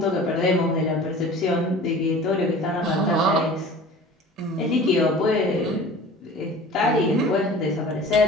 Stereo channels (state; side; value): normal; both; correlation 0.42